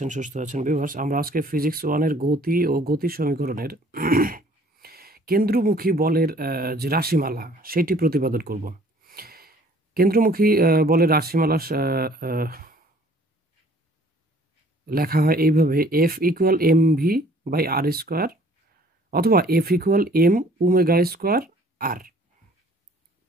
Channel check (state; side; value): normal; both; correlation 0.56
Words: সুস্থ আছেন। ভিউয়ার্স, আমরা আজকে ফিজিক্স 1 এর গতি ও গতি সমীকরণের কেন্দ্রমুখী বলের যে রাশিমালা সেটি প্রতিপাদন করব। কেন্দ্রমুখী বলের রাশিমালা লেখা হয় এইভাবে: F equal M V by R square, অথবা F equal M omega square R.